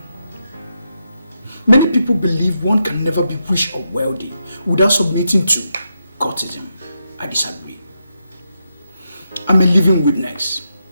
Many people believe one can never be rich or wealthy without submitting to cultism. I disagree. I'm a living witness.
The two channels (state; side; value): inverted; both; correlation -0.84